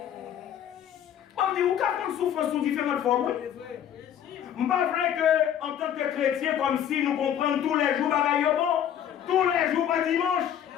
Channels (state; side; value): quieter; right; 9.8 dB